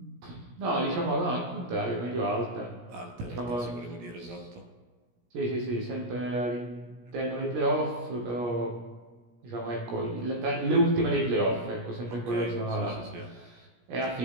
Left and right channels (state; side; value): late; left; 17 ms